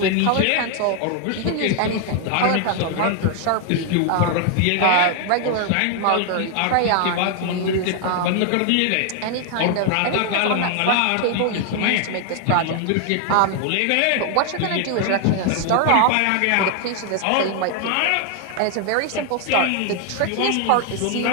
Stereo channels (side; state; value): both; different; correlation 0.00